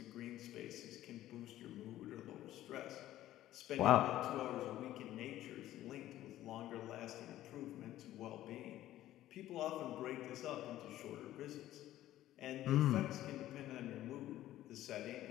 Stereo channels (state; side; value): quieter; right; 13.9 dB